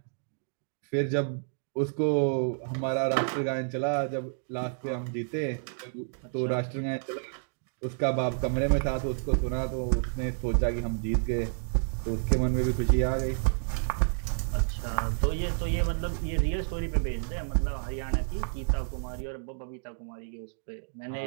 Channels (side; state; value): left; silent; digital silence